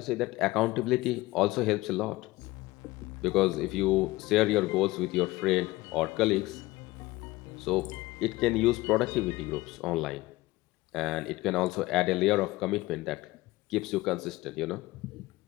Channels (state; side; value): quieter; right; 19.5 dB